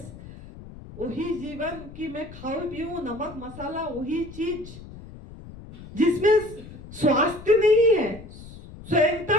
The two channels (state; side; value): noise; left; rumble, 16 dB below the sound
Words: वही जीवन कि मैं खाऊं पीऊं, नमक मसाला वही चीज जिसमें स्वास्थ्य नहीं है, स्वयंता